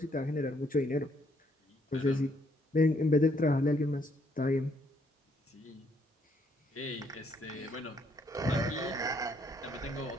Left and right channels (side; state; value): both; normal; correlation 0.70